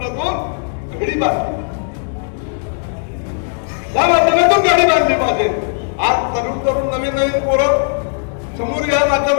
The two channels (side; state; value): right; silent; digital silence